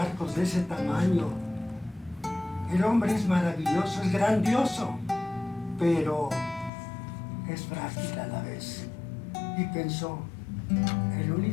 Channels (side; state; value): right; drops out; at 6.7 s